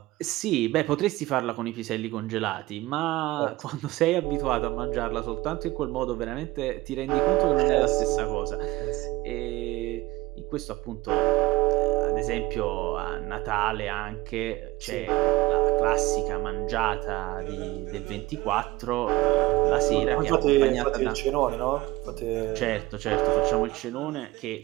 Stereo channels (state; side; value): quieter; left; 19.3 dB